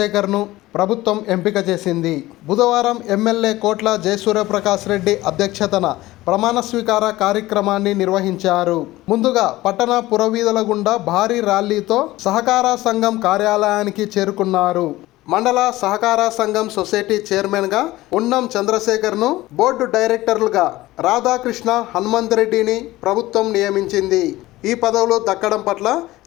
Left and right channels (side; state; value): right; quieter; 17.6 dB